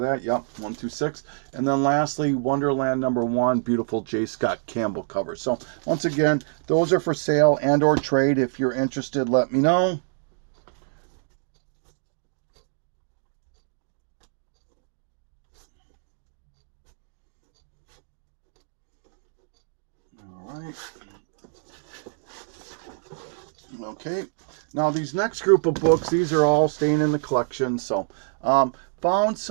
that. Yep, 1 through 6. And then lastly, Wonderland number 1, beautiful J. Scott Campbell cover. So once again, those are for sale and or trade. If you're interested, let me know. All right. Okay. Now these next group of books, these are all staying in the collection. So found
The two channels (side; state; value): left; silent; digital silence